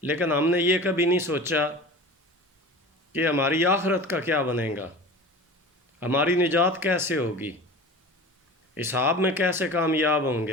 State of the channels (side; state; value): both; normal; correlation 0.36